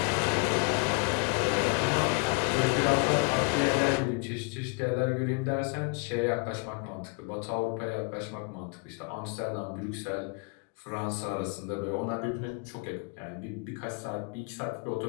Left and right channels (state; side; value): quieter; right; 32.6 dB